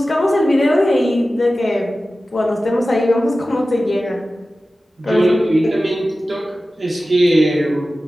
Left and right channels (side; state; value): both; normal; correlation 0.95